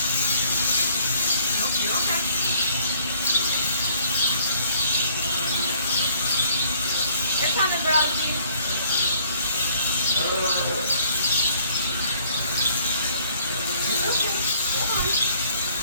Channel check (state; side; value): inverted; both; correlation -0.61